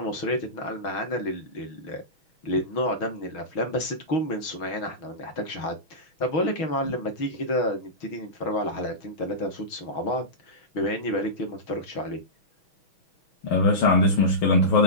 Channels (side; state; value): right; late; 6.3 ms